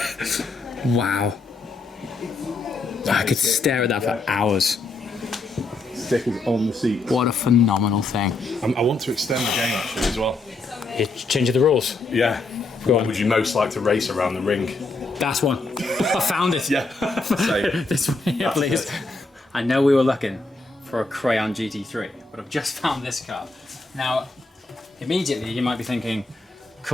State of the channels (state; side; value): quieter; right; 3.4 dB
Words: Wow. I could stare at that for hours. Stickers on the seat. What a phenomenal thing. I want to extend the game actually as well. You're changing the rules. Yeah. Go What on. would you most like to race around the ring? That's one. I found it. Yeah. Same. This one here, please. I know we were looking for a Crayon GT3, but I've just found this car. Now, immediately you might be thinking,